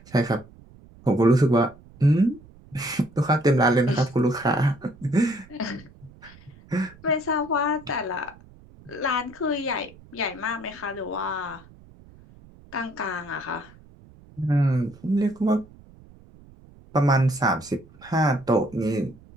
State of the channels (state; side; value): noise; right; rumble, 24 dB below the sound